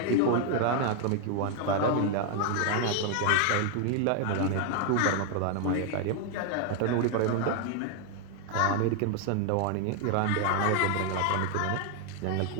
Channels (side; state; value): both; different; correlation 0.00